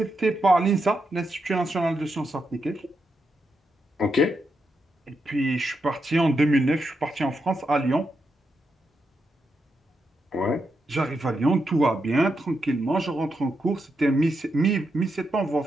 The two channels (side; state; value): both; normal; correlation 0.84